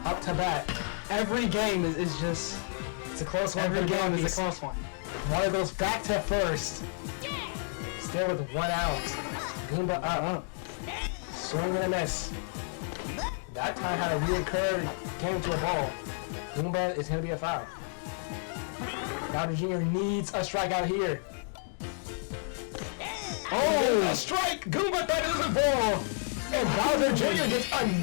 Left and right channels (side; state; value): right; silent; 56 dB below the other